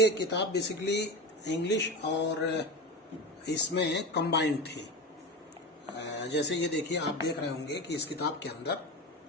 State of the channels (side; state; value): both; normal; correlation 0.24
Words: किताब बेसिकली इंग्लिश और इसमें कंबाइंड थी। जैसे ये देखिए, आप देख रहे होंगे कि इस किताब के अंदर